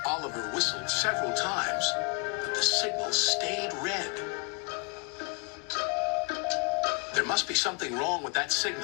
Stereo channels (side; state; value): right; quieter; 33.2 dB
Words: Oliver whistled several times, but the signal stayed red. There must be something wrong with that